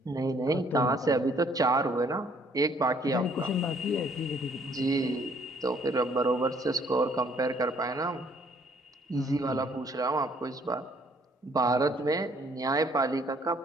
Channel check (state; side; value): normal; both; correlation 0.62